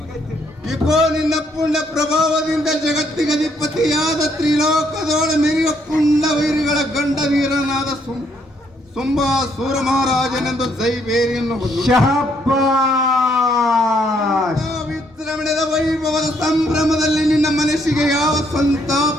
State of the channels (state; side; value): normal; both; correlation 0.70